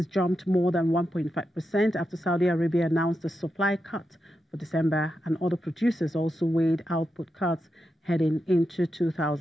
jumped more than 1.5% after Saudi Arabia announced a supply cut for December, and other producers also weighed output cuts heading into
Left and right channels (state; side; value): normal; both; correlation 0.87